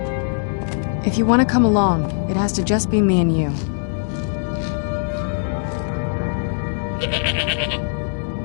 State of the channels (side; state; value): right; silent; 65 dB below the other